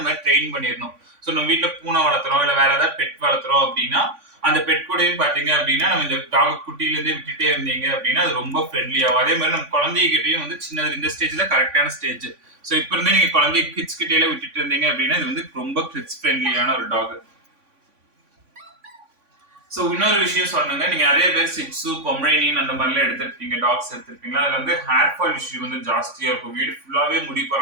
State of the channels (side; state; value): left; late; 3.5 ms